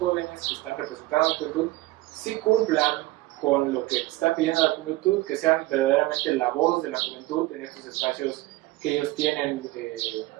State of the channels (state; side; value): quieter; left; 18.7 dB